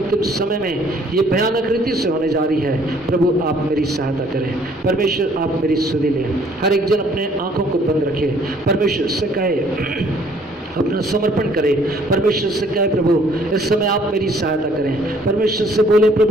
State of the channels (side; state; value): both; normal; correlation 0.60